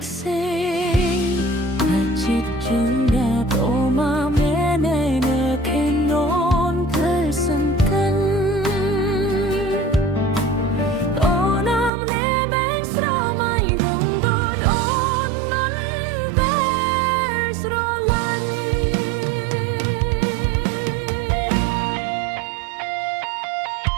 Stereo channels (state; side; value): drops out; left; at 11.9 s